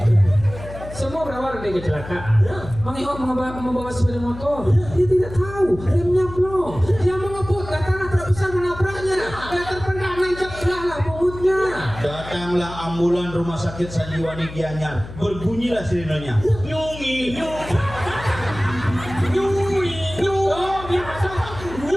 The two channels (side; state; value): left; noise; hum, 13 dB below the sound